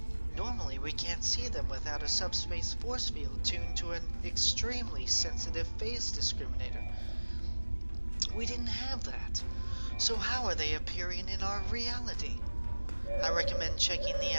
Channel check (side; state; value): both; inverted; correlation -1.00